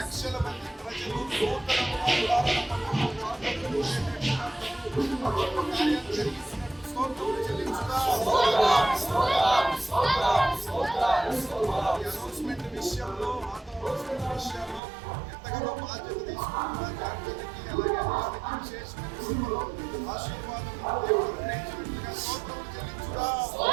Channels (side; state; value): left; drops out; at 14.8 s